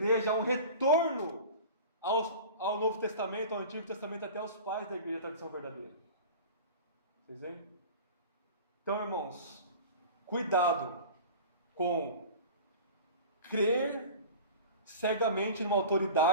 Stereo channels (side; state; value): both; inverted; correlation -0.37